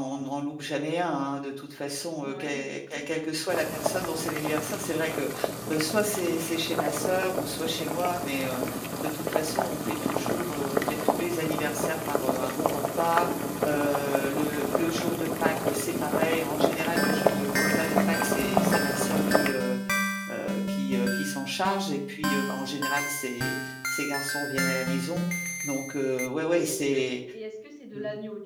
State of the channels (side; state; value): both; identical; correlation 1.00